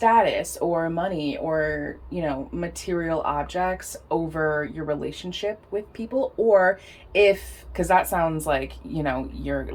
or money or, you know, material objects over your relationship with people, or if, because that sounds like, you know, you're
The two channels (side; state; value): both; identical; correlation 1.00